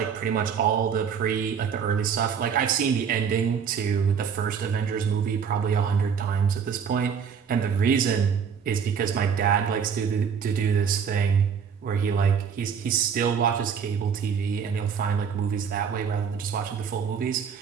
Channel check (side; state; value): left; quieter; 7.0 dB